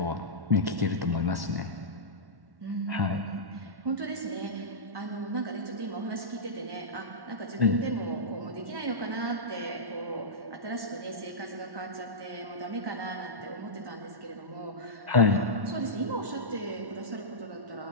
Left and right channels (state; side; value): late; left; 1.1 ms